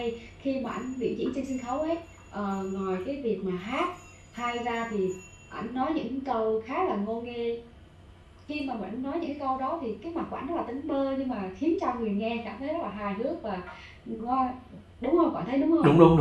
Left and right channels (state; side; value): identical; both; correlation 1.00